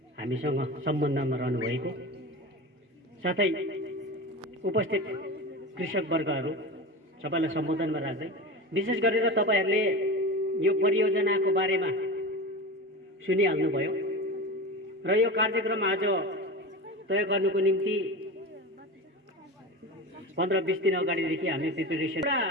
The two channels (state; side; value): normal; both; correlation 0.27